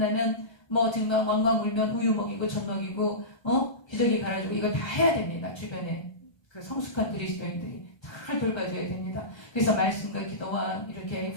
뭐 정말 왕왕 울면 우유 먹이고 젖 먹이고 기저귀 갈아주고 이걸 다 해야 됩니다. 주변에 그 성숙한 그리스도인들이 잘 돌봐줘야 됩니다. 그래서 말씀과 기도와 이렇게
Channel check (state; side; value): late; right; 1.3 ms